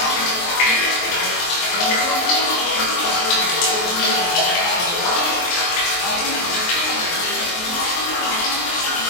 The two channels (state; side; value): late; right; 23 ms